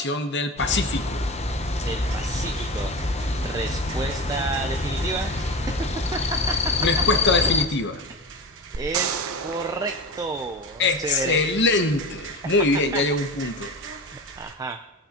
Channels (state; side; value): normal; both; correlation 0.27